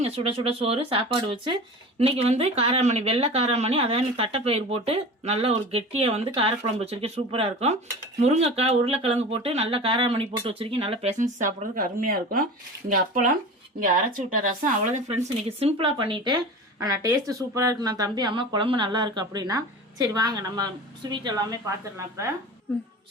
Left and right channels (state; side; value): normal; both; correlation 0.34